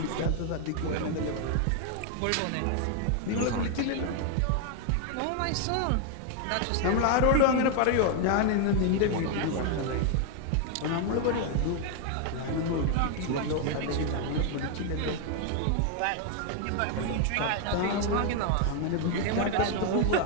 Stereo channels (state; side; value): different; both; correlation 0.00